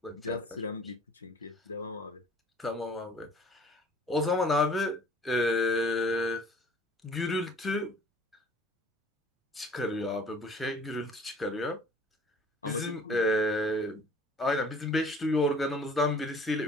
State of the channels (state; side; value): normal; both; correlation 0.52